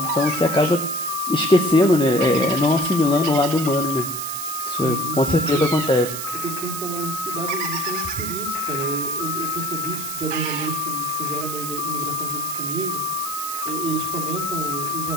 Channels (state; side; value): noise; right; hiss, 7 dB below the sound